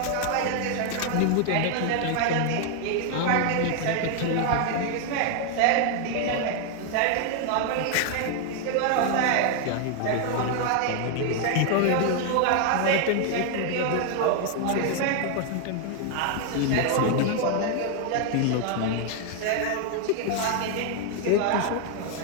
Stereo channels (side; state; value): both; different; correlation 0.00